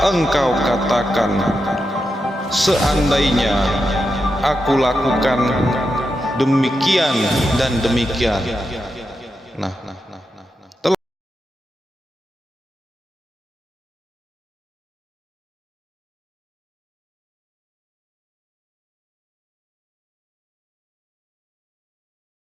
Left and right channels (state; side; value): normal; both; correlation 0.87